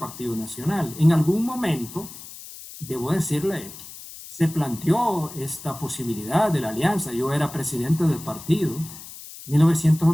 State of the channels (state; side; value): noise; left; hiss, 15 dB below the sound